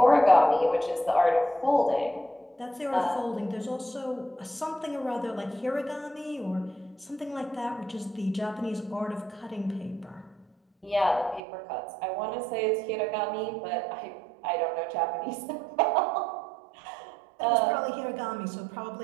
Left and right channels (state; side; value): drops out; left; at 11.4 s